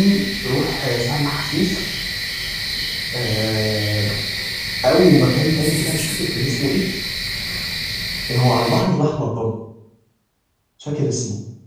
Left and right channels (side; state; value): both; identical; correlation 1.00